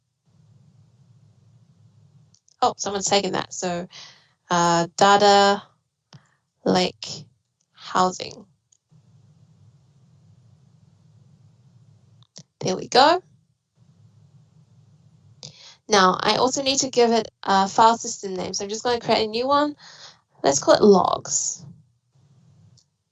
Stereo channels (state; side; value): identical; both; correlation 1.00